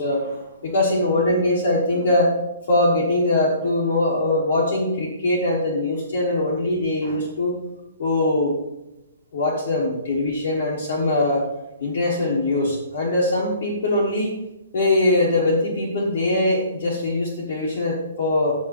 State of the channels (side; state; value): both; inverted; correlation -0.54